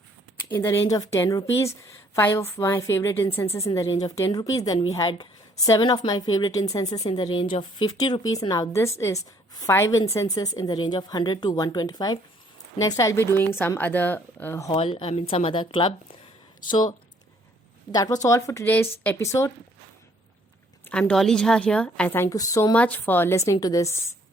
the range of 10 rupees, 5 of my favorite incenses in the range of 10 rupees. Then we had 7 of my favorite incenses in the range of 50 rupees. Now this is 5 incenses in the range of 100 to 125. Next I'll be doing some other some other club. So that was all for today's episode. I'm Dolly Jha here. I thank you so much for listening to this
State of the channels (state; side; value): normal; both; correlation 0.63